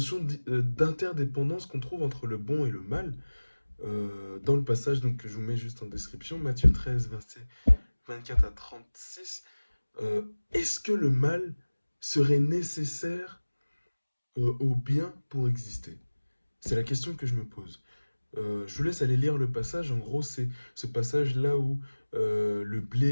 d'interdépendance qu'on trouve entre le bon et le mal. Dans le passage donc, que je vous mets juste en description, Matthieu 13, versets 24 à 36, est-ce que le mal serait nécessaire au bien pour exister? C'est la question que je me pose. Je vous laisse aller lire le passage. En gros, c'est ce passage-là où le blé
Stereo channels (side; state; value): both; inverted; correlation -1.00